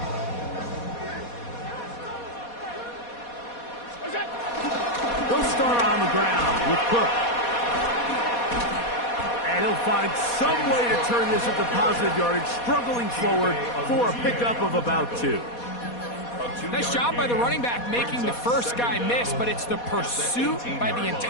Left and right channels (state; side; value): late; right; 4.2 ms